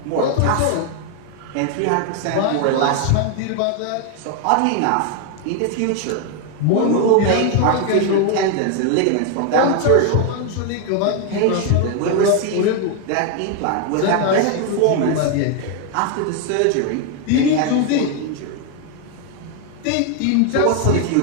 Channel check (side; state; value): both; different; correlation 0.01